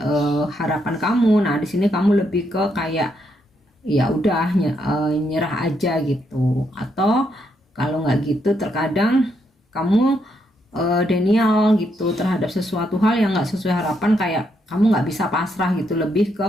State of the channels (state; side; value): normal; both; correlation 0.77